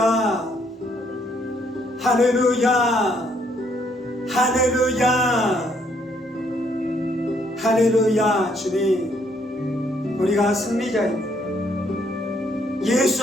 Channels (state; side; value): normal; both; correlation 0.69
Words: 할렐루야, 할렐루야, 할렐루야. 주님, 우리가 승리자입니다. 예수